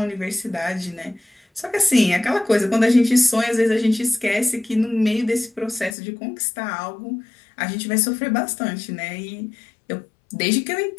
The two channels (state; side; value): drops out; right; at 6.0 s